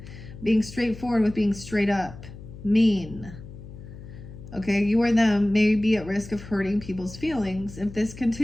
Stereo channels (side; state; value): left; noise; hum, 15 dB below the sound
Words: being straightforward with being straight up. Mean. Okay, you or them may be at risk of hurting people's feelings. If this